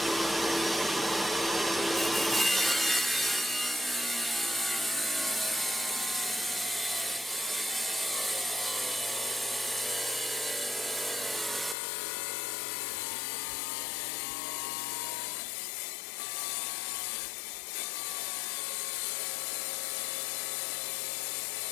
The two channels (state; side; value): drops out; right; at 11.8 s